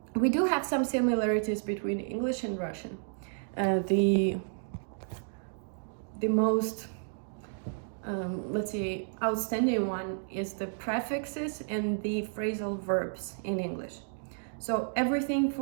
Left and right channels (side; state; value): left; silent; digital silence